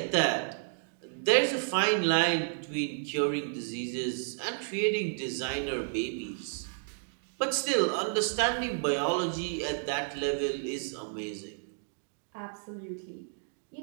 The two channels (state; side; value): silent; left; digital silence